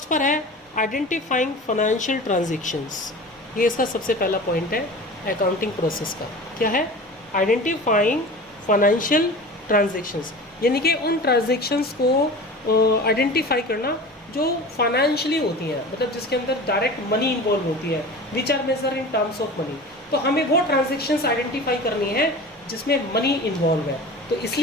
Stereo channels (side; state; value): both; normal; correlation 0.36